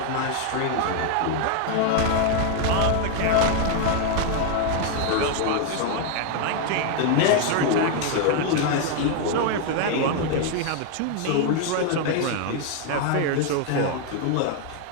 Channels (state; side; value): different; both; correlation 0.00